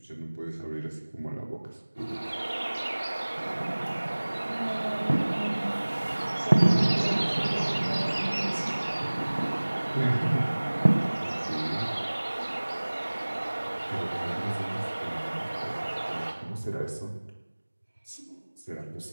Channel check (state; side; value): inverted; both; correlation -1.00